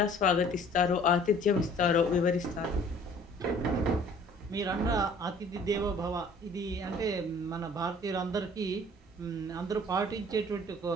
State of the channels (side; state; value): both; normal; correlation 0.52